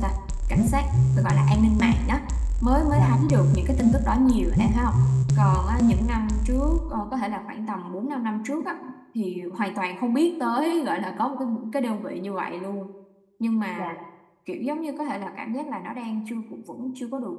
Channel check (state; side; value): identical; both; correlation 1.00